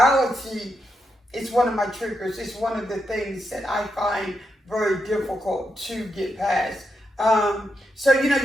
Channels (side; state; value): both; normal; correlation 0.83